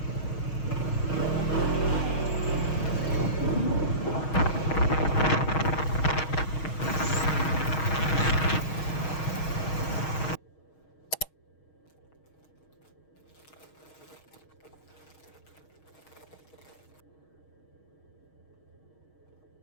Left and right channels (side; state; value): right; late; 6.3 ms